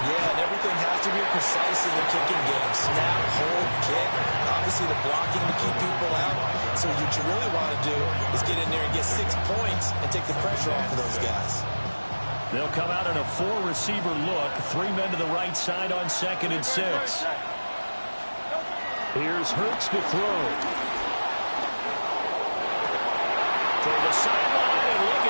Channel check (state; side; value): inverted; both; correlation -1.00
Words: Yeah, and everything has to be precise in the kicking game. Snap, hold, kick. Obviously, the blocking to keep people out. So what you really want to do is get in there and get 6 points and take the pressure off of those guys. They'll come out in a 4-receiver look. 3 men to the right side on 2nd and 6. Here's Hurts to throw. Toward the sideline, and look